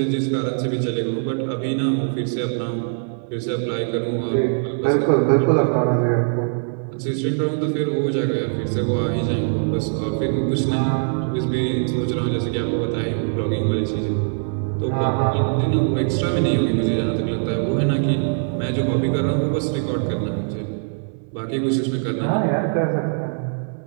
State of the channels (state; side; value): silent; left; 59 dB below the other